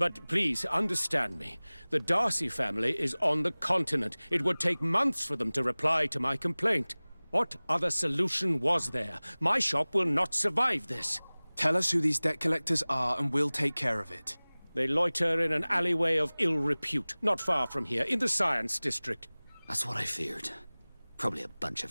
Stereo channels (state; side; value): inverted; both; correlation -1.00